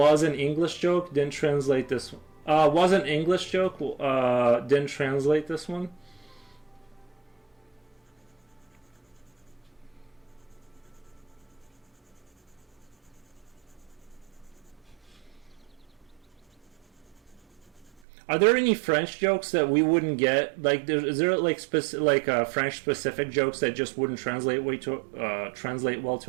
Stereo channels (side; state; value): left; drops out; at 17.9 s